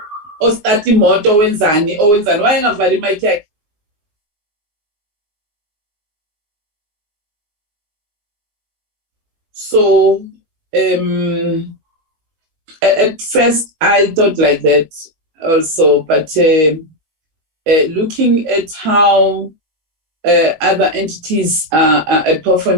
ostart imoto wenzani wayengavali mic yakhe. So at first I thought like that also, but looking at how other entities are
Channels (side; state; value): left; late; 19 ms